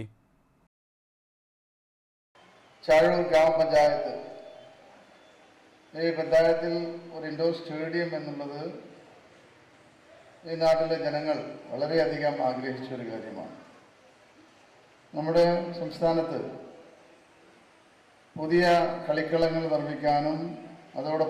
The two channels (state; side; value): identical; both; correlation 1.00